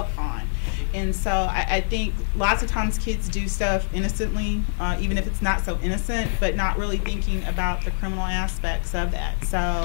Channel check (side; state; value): right; silent; digital silence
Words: on. And so I think lots of times kids do stuff innocently, even if it's not so innocent, but not really thinking about the criminal aspects of that.